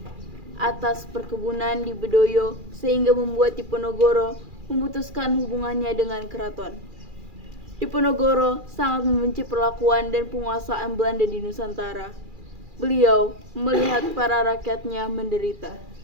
atas perkebunan di Bedoyo sehingga membuat Diponegoro memutuskan hubungannya dengan keraton. Diponegoro sangat membenci perlakuan dan penguasaan Belanda di Nusantara. Beliau melihat para rakyatnya menderita.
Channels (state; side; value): late; left; 2.4 ms